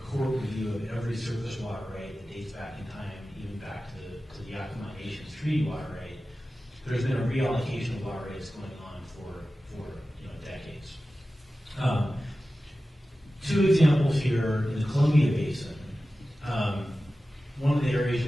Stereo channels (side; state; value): both; normal; correlation 0.95